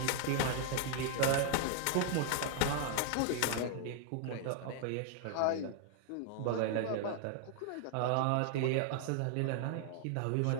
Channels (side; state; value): both; different; correlation 0.00